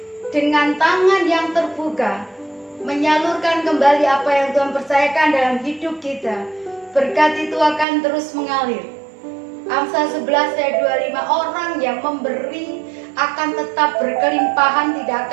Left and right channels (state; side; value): drops out; left; at 7.9 s